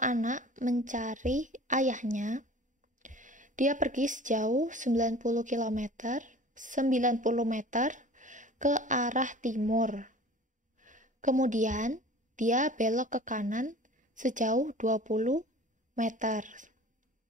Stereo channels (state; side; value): normal; both; correlation 0.43